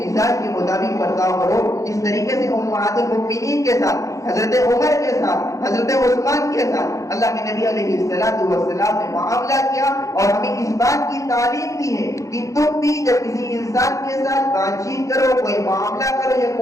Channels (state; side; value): late; right; 0.15 ms